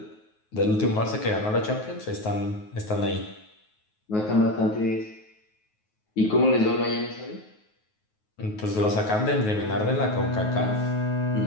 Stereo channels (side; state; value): right; late; 9.4 ms